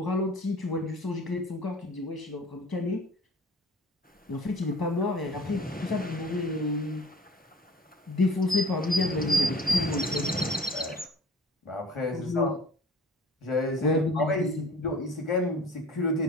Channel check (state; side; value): normal; both; correlation 0.45